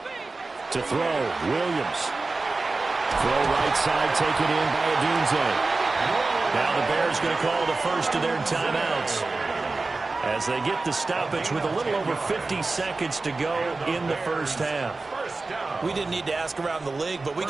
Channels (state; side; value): quieter; left; 3.6 dB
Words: To throw, Williams. Throw right side, taken in by Odunze. Now the Bears going to call the first of their timeouts. as they get the stoppage with a little over 50 seconds to go in the first half. We didn't need to ask around the league, but we